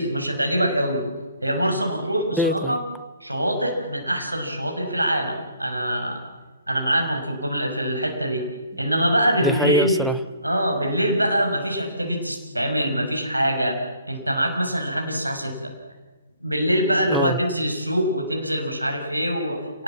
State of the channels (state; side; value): inverted; both; correlation -0.62